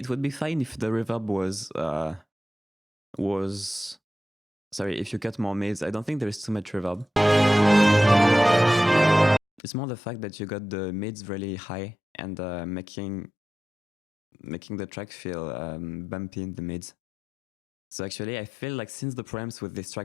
would be fine if the reverb was sorry, if you cut more mids. I don't think there is too much reverb. It's more the fact that you got the mids really high and making the track feel bumpy in the mids. So actually, I feel like since the preamps with this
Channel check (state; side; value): drops out; right; at 9.6 s